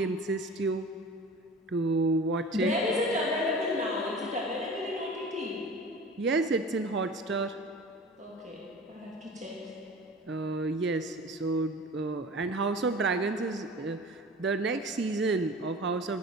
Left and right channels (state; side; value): normal; both; correlation 0.39